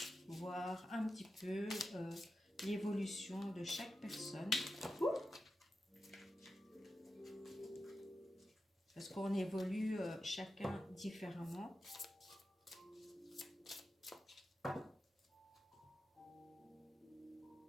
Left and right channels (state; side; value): normal; both; correlation 0.90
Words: voir un petit peu l'évolution de chaque personne. Parce qu'on évolue chacun différemment.